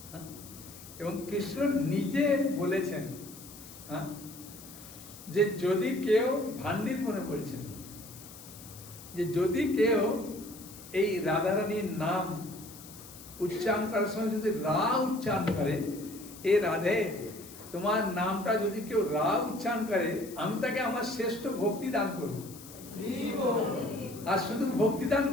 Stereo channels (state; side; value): noise; left; hiss, 17 dB below the sound